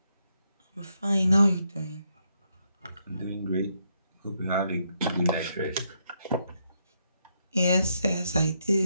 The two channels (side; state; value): both; inverted; correlation -0.77